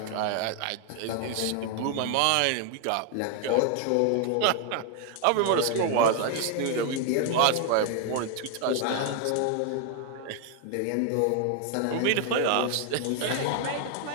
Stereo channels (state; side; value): different; both; correlation 0.00